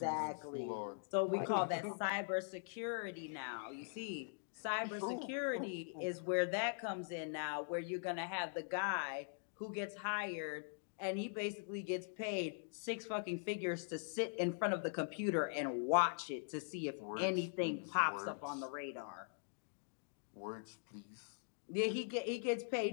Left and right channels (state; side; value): silent; right; digital silence